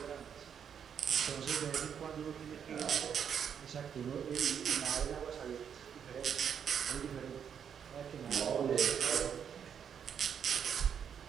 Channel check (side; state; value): left; quieter; 7.9 dB